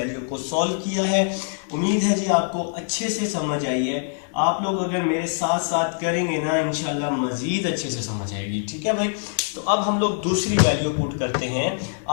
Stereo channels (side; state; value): right; silent; 63 dB below the other